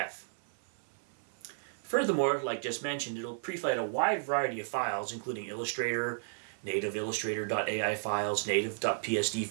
Furthermore, like just mentioned, it'll pre-flight a wide variety of files, including Illustrator, native Illustrator.ai files, native.psd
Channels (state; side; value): silent; left; 56 dB below the other